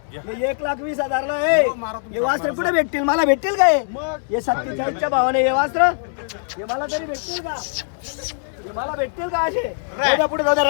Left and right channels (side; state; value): right; silent; 65 dB below the other